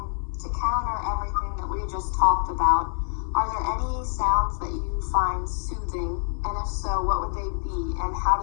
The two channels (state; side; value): silent; right; digital silence